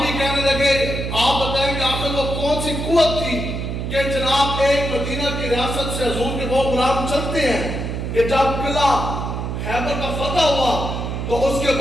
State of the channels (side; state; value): right; noise; hum, 4 dB below the sound